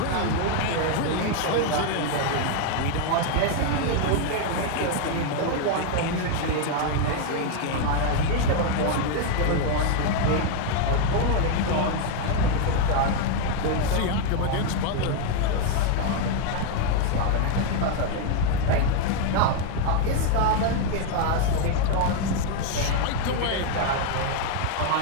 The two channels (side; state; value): both; different; correlation 0.01